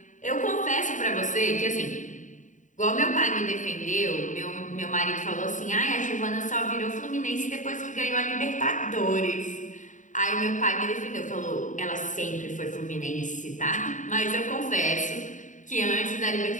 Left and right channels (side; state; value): right; late; 0.37 ms